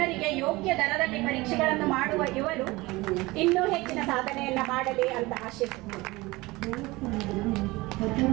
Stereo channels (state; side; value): quieter; left; 21.5 dB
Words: ಯೋಗ್ಯ ದರದಲ್ಲಿ ಪರೀಕ್ಷೆಗಳನ್ನು ಮಾಡುವ ಇವರು ಇನ್ನೂ ಹೆಚ್ಚಿನ ಸಾಧನೆಯನ್ನ ಮಾಡಲಿ ಅಂತ ಆಶಿಸುತ್ತಾರೆ.